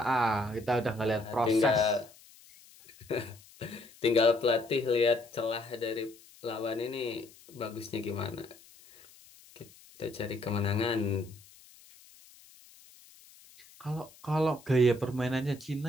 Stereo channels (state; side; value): noise; left; hiss, 24 dB below the sound